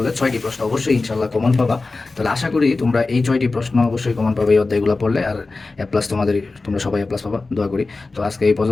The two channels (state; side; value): quieter; right; 3.6 dB